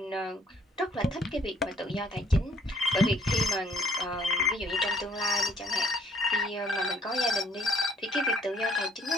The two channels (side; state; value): both; normal; correlation 0.62